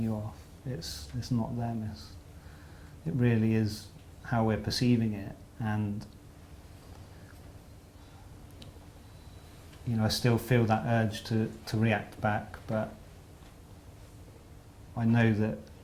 you off. It's not them. It really is how we're perceiving it. And I still feel that urge to react back, but I know that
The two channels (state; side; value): identical; both; correlation 1.00